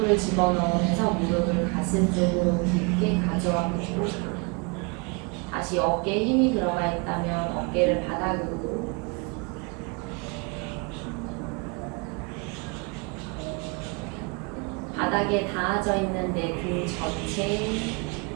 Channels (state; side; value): quieter; left; 31.0 dB